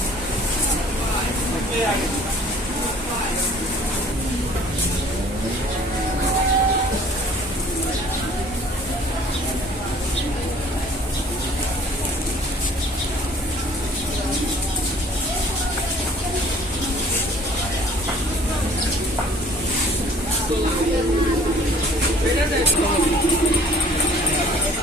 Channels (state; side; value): normal; both; correlation 0.53